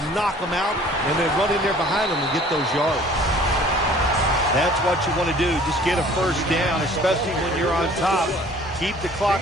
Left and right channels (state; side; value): normal; both; correlation 0.51